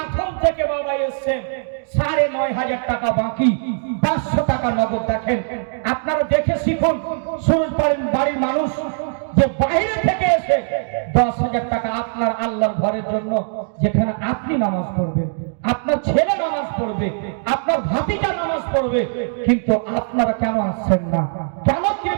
থেকে বাবা এসেছেন। 9,500 টাকা বাকি, 500 টাকা নগদ। দেখেন আপনারা দেখে শিখুন, সুরজ বাড়ির মানুষ যে বাইরে থেকে এসে 10,000 টাকা আপনার আল্লাহর ঘরের জন্য, যেখানে আপনি নামাজ পড়বেন, আপনার ছেলে নামাজ পড়বে, আপনার ভাতিজা নামাজ পড়বে, কিন্তু আপনারা কেন আসছেন না? কেন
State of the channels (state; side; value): silent; left; digital silence